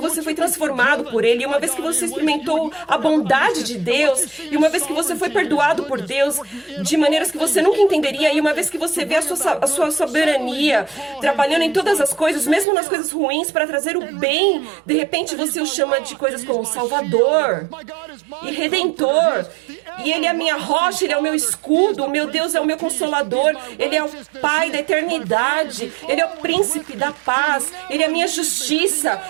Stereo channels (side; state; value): left; drops out; at 12.7 s